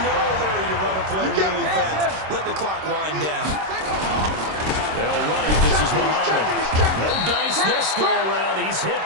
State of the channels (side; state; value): left; late; 26 ms